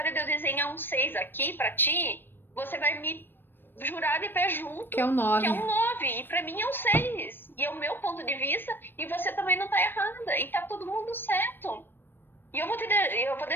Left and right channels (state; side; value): late; right; 0.097 ms